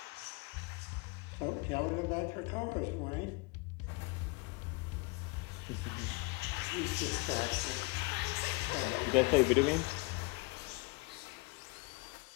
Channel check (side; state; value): right; quieter; 25.7 dB